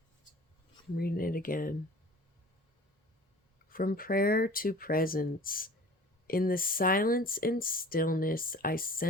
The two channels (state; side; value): normal; both; correlation 0.45